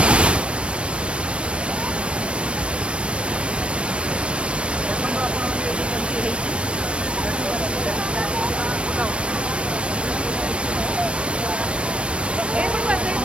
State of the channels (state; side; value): late; left; 0.059 ms